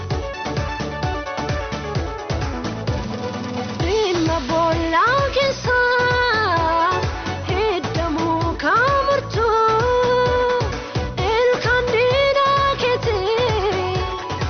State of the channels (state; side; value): identical; both; correlation 1.00